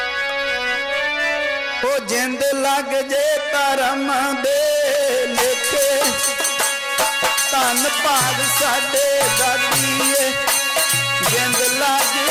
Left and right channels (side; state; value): both; identical; correlation 1.00